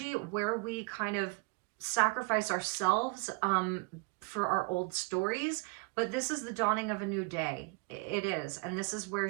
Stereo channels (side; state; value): left; quieter; 30.8 dB